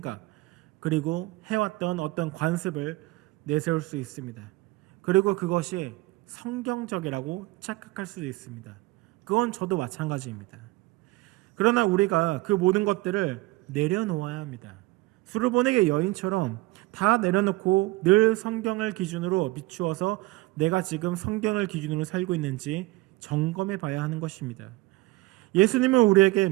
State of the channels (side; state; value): left; quieter; 20.4 dB